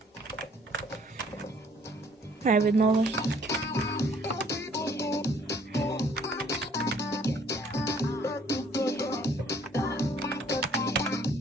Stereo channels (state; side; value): normal; both; correlation 0.60